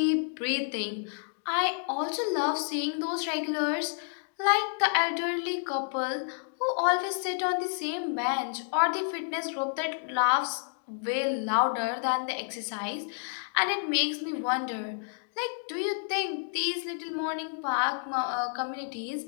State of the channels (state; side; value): silent; right; digital silence